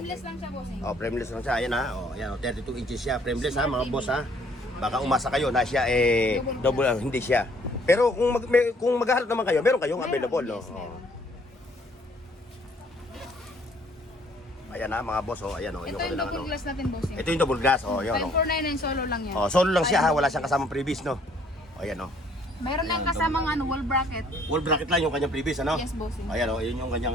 lang siya, bossing. Oh, frameless lang siya. Ayan ha. Oh, ayan, 32 inches siya. Frameless ha, mga boss ha. Baka umasa kayo na siya double hindi siya. Pero kung maghahanap naman kayo, meron kayong available, no? Yes, meron. Ayan ha, mga boss, oh. Ayan oh, Ito yung double glass natin, bossing. Ito yung double glass, oh, yun oh. 5,499 solo lang yan. Oh, solo lang siya ha, wala siyang kasamang previous, no? Oh, ayan oh. Mayroon lang kasamang wall bracket. Wall bracket lang yung kanyang previous, ano? Yes, bossing. Ayan oh, yun yung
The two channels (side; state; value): both; normal; correlation 0.61